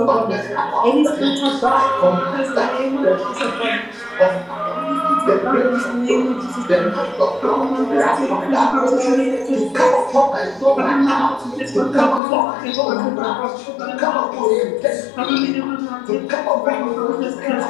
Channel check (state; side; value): drops out; right; at 12.2 s